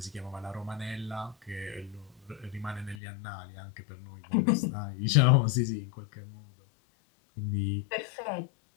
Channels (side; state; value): right; drops out; at 3.0 s